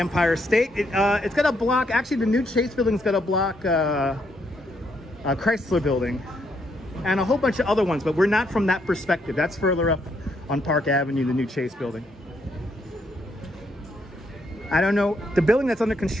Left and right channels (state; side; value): normal; both; correlation 0.75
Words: State. It's going to block, actually the new Chase building's going to block Chrysler building and a whole bunch of other ones, but we're not from that perspective. That's further up on Park Avenue, the new Chase building. I don't know, the building that's under